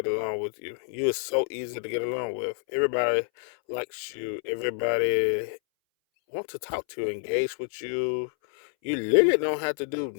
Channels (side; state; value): right; silent; 59 dB below the other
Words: along with you. You are so easy to get along with. Everybody likes you. Everybody wants to talk to you, engage with you. You literally don't have to do